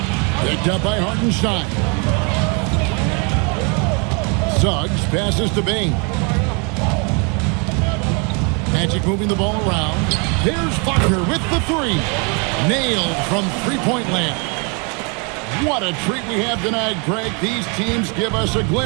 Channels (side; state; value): left; quieter; 34.1 dB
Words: Picked up by Hartenstein. Suggs passes to Bane. Magic moving the ball around. There's Wagner with the 3. Nailed from three-point land. What a treat we have tonight, Greg. These teams give us a